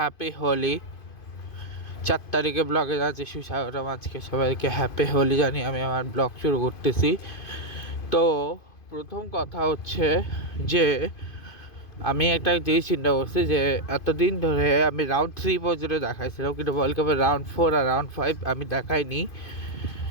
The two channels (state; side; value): late; right; 2.5 ms